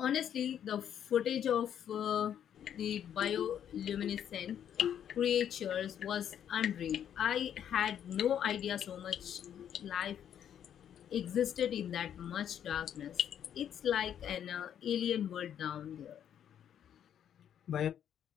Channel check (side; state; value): right; quieter; 9.5 dB